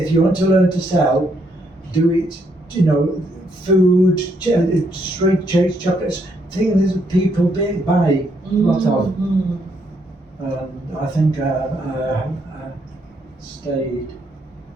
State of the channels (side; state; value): both; normal; correlation 0.74